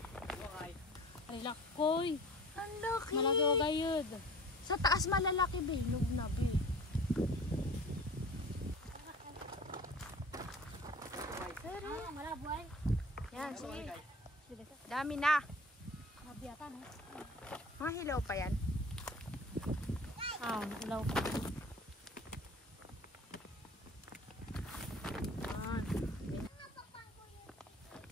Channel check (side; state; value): both; normal; correlation 0.43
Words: Ay, lakoy. Ang laki. Malaki o gayod. Sa taas malalaki, be. Hinog na, be. Malabo ay. Yan, sige. Sige ka. Dami na. Mabiyatan eh. Mga hilaw pa yan. Ilaw. Yan.